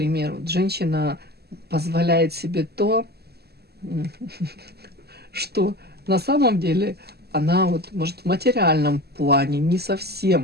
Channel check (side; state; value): left; late; 0.46 ms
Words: вот женщина позволяет себе то, что на самом деле она вот, может, в материальном плане не